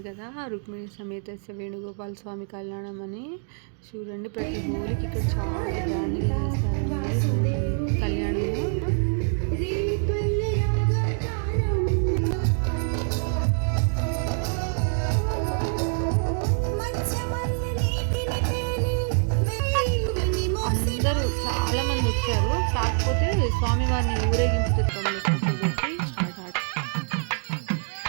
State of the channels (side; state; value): left; silent; 61 dB below the other